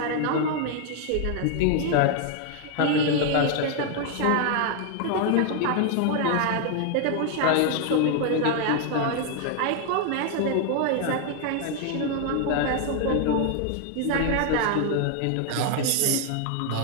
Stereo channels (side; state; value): both; different; correlation 0.00